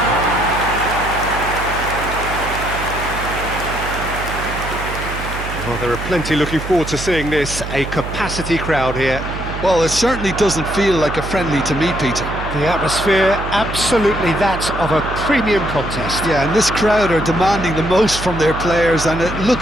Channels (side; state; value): right; noise; hum, 8 dB below the sound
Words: Well, there are plenty looking forward to seeing this, a capacity crowd here. Well, it certainly doesn't feel like a friendly to me, Peter. The atmosphere, absolutely that of a premium contest. Yeah, and this crowd are demanding the most from their players, and it